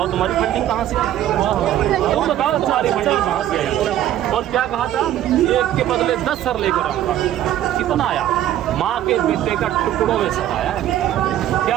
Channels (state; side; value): quieter; left; 12.2 dB